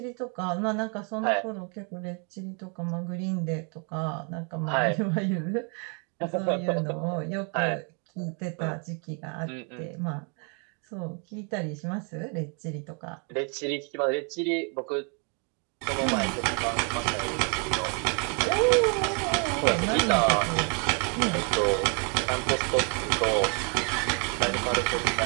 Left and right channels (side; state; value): left; quieter; 37.4 dB